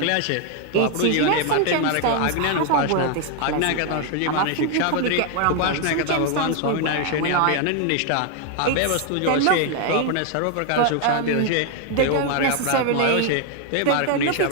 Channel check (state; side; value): different; both; correlation 0.00